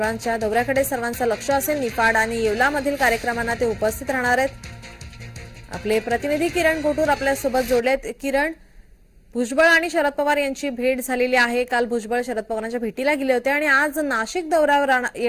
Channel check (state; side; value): identical; both; correlation 1.00